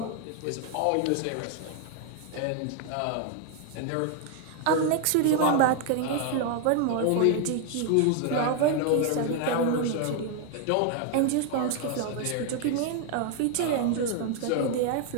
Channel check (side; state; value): both; different; correlation 0.00